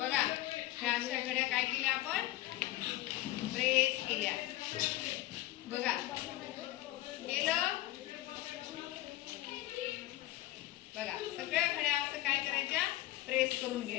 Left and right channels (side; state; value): right; quieter; 16.3 dB